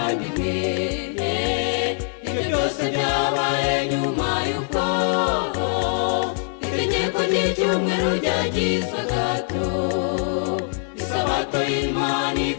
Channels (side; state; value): right; silent; 56 dB below the other